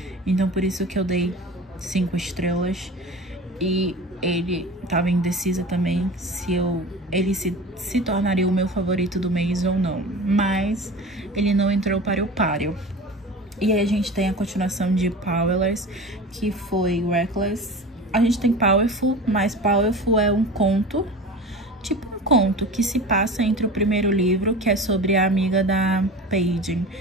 Então por isso que eu dei 5 estrelas. E ele estava indecisa também se ele se tornaria o meu favorito do mês ou não. Mas ele não entrou para o páreo. E aí a gente tem a continuação de Powerless, que foi Reckless. A gente tem Powerful, mas Powerful é um conto, tipo um conto que se passa entre o primeiro livro, que é sobre a amiga da Paige,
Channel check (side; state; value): both; normal; correlation 0.34